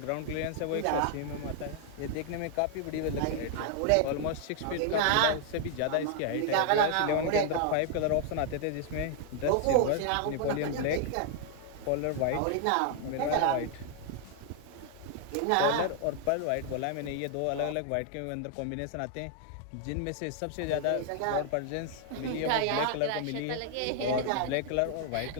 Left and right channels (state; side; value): different; both; correlation 0.00